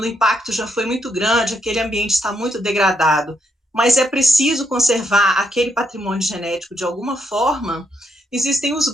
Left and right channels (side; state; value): both; normal; correlation 0.77